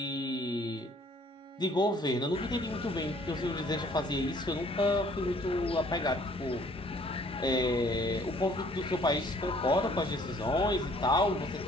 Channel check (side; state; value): both; normal; correlation 0.58